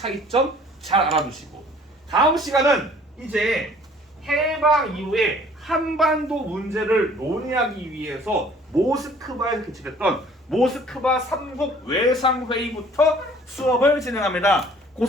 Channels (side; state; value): both; normal; correlation 0.54